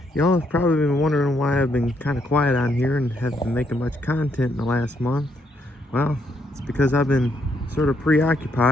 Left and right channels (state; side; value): normal; both; correlation 0.74